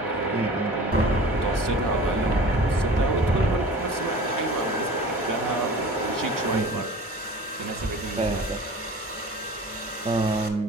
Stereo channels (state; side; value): normal; both; correlation 0.40